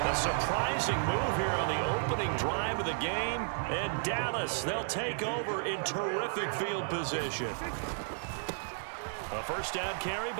A surprising move here on the opening drive of the game. And Dallas, they'll take over in terrific field position. A first down carry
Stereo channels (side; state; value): left; silent; digital silence